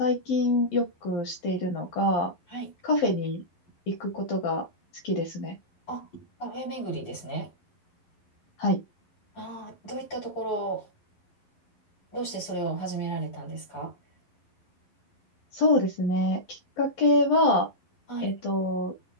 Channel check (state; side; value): late; right; 11 ms